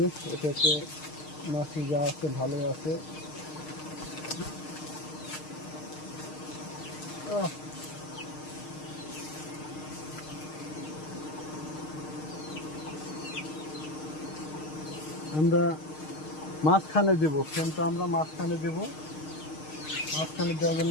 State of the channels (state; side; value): late; right; 6.5 ms